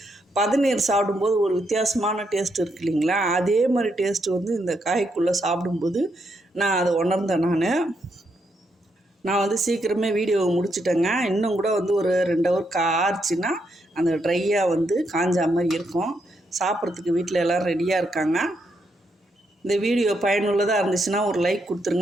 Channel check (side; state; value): both; normal; correlation 0.79